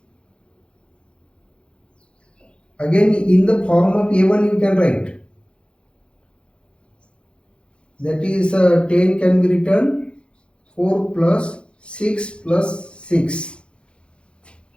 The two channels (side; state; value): right; late; 0.056 ms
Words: again in the form of A1 you can write. That is 10 can be written 4 plus 6 plus 6.